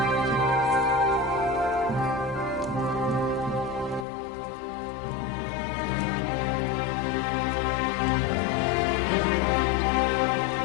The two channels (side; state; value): right; drops out; at 4.0 s